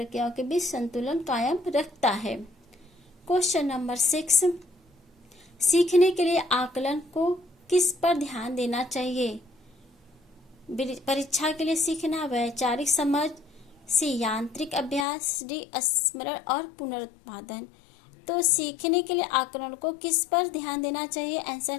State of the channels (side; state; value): right; drops out; at 15.1 s